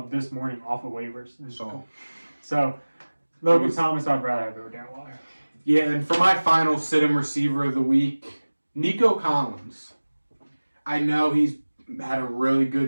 this morning off of waivers. So Logan Thomas, I'd rather have over Darren Waller. Yeah, and for my final sit-em receiver of the week, Nico Collins. I know he's had a really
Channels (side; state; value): both; inverted; correlation -1.00